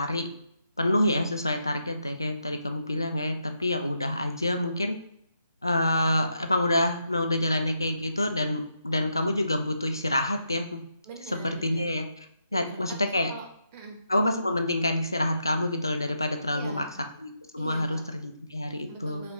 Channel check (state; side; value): inverted; both; correlation -0.81